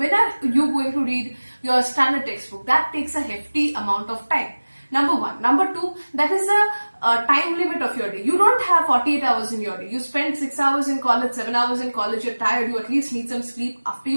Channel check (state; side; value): inverted; both; correlation -1.00